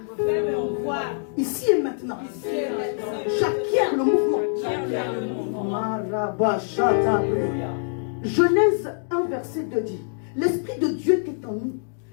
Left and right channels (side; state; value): right; silent; digital silence